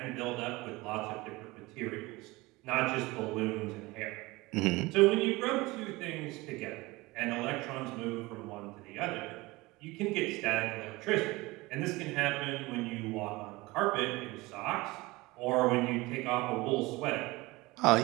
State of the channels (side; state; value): left; quieter; 21.7 dB